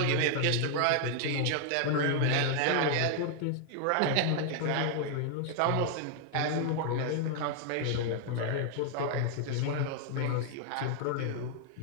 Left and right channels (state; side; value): different; both; correlation 0.00